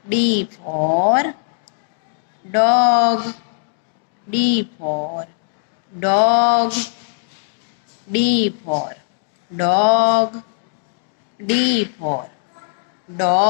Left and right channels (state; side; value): silent; right; digital silence